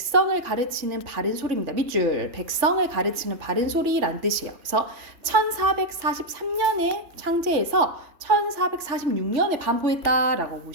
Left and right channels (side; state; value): left; late; 3.5 ms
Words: 가르치는 바른 소리입니다. 밑줄. 백성을 가르치는 바른 소리란 뜻이에요. 그래서 1443년에 창제해서 1446년에 반포했다라고